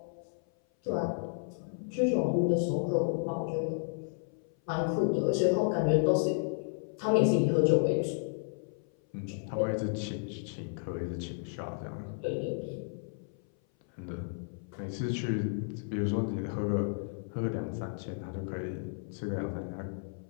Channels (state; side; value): silent; right; 56 dB below the other